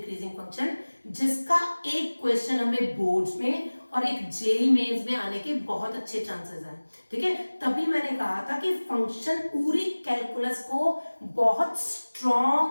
फंक्शन, जिसका एक क्वेश्चन हमें बोर्ड्स में और एक जेई मेंस में आने के बहुत अच्छे चांसेस हैं, ठीक है। तभी मैंने कहा था कि फंक्शन पूरी कैलकुलस को बहुत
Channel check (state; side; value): inverted; both; correlation -1.00